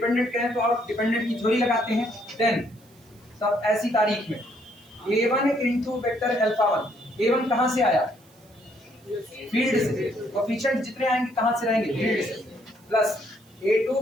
कहें तो आप डिपेंडेंट की थ्योरी लगाते हैं, देन तब ऐसी तारीख में a1 into vector alpha 1, a1 कहां से आया, फील्ड से, कोफिशिएंट जितने आएंगे कहां से रहेंगे, फील्ड से, plus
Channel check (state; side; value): noise; right; hiss, 30 dB below the sound